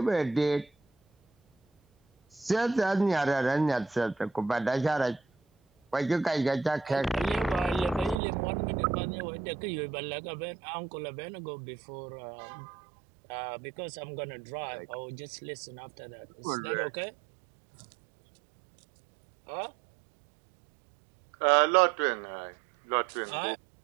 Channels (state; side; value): drops out; left; at 8.2 s